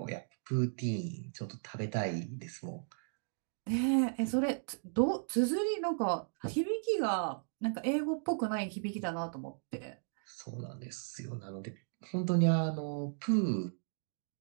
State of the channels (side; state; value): left; silent; digital silence